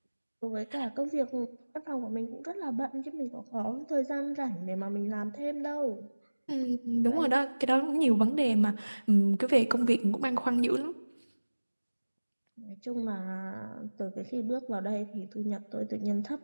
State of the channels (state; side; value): inverted; both; correlation -1.00